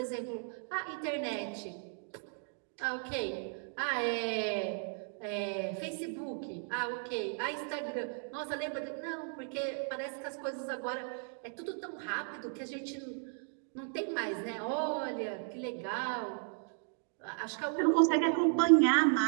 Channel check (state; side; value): silent; left; 54 dB below the other